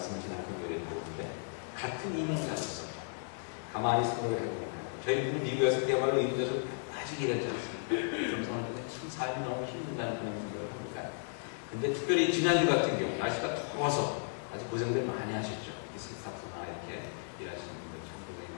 한편 요리를 보는데 같은 이민자로서 가만히 생각을 해보니까 저희 분은 미국에서 그야말로 이민자로 아직 일하지 않습니다. 정성을 듣는데 참 삶이 너무 힘든다는 그런 생각을 합니다. 근데 특별히 지난주 같은 경우 날씨가 더워서 아주 고생들 많이 하셨죠. 스타프나 이렇게 일하시는 분들 참 고생이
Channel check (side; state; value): right; silent; digital silence